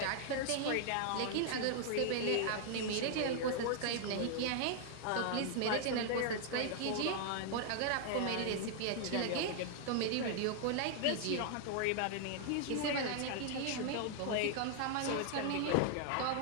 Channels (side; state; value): both; different; correlation 0.00